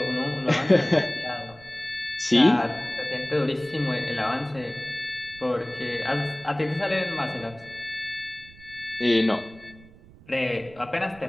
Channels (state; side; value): noise; right; rumble, 22 dB below the sound